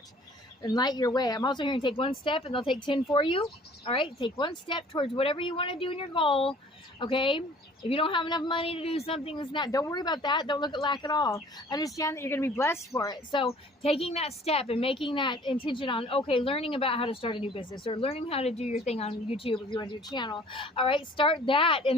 and light your way. I'm also hearing take one step and they'll take 10 for you. All right, take one step towards whatever you want to do in your goal. Okay, if you don't have enough money to do something that's not, don't worry about that. Don't look at lack at all. Understand that you're going to be blessed for it. So taking that step and making that intention on, okay, learning about how to start a new business or learning how to do your thing on YouTube if you want to do a channel. All right, start that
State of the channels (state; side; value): normal; both; correlation 0.52